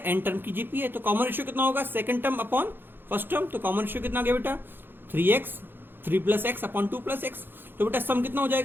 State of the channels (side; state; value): left; late; 0.10 ms